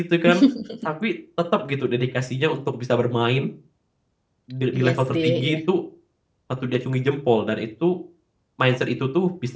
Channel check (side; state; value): both; identical; correlation 1.00